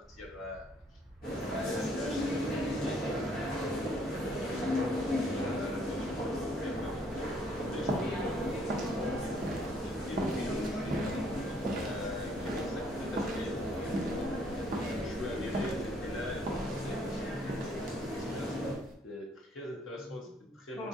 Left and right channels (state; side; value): normal; both; correlation 0.64